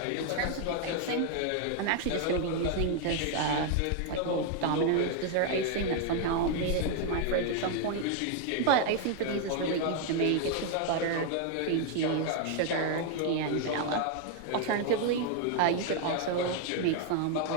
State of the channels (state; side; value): different; both; correlation 0.00